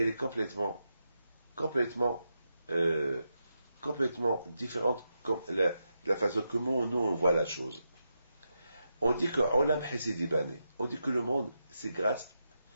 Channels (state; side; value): inverted; both; correlation -0.86